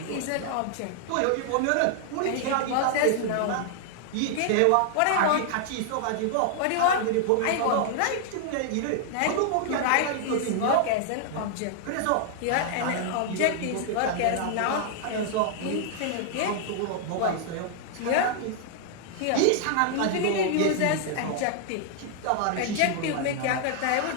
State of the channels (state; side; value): different; both; correlation 0.00